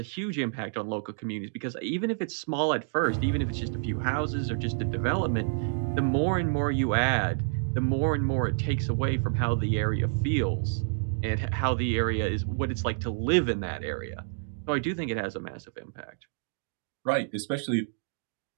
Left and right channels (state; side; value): silent; left; digital silence